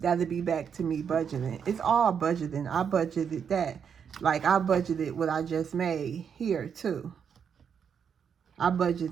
that'll be back to me budgeting. It's all budgeting. I budgeted that. Like I budgeted what I just made here too. I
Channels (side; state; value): left; quieter; 7.3 dB